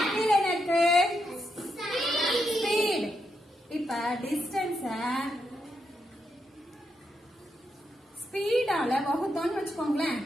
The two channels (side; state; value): both; normal; correlation 0.82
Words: கீழே என்ன இருக்கு? ஸ்பீட். இப்ப டிஸ்டன்ஸ் ஸ்பீடால வகுத்தோம்னு வச்சுக்கோங்களேன்.